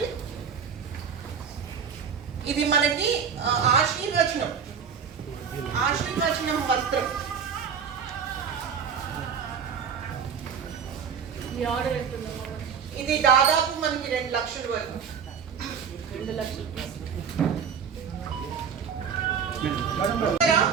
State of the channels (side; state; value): left; quieter; 6.9 dB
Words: ఇది మనకి ఆశీర్వచనం వస్త్రం. ఇది దాదాపు మనకి 2 లక్షల వరకు. 2 లక్షలు